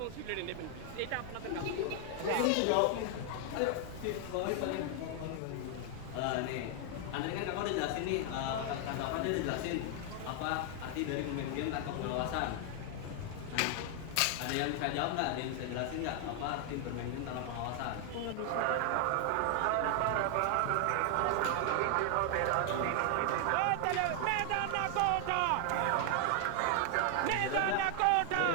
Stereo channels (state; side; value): different; both; correlation 0.00